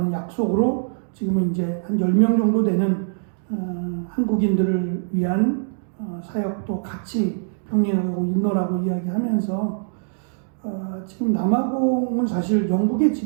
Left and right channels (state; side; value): silent; left; digital silence